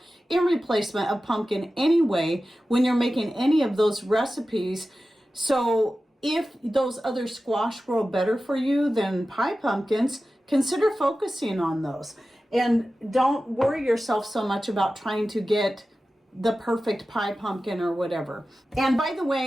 in replacement of pumpkin anyway, when you're making any of those recipes. So if those other squash grow better for you than pie pumpkins, consider focusing on those. And don't worry yourself so much about trying to get the perfect pie pumpkin or whatever. And by the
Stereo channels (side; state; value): both; normal; correlation 0.94